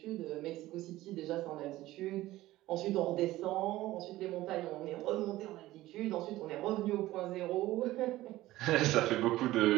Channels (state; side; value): quieter; left; 16.4 dB